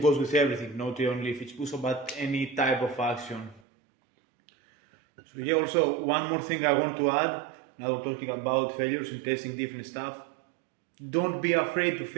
with everything, not only if it's push-up, but any type of action. So yeah, also one more thing I want to add, now we're talking about failures and testing different stuff. Don't be afraid to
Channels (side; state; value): left; drops out; at 3.6 s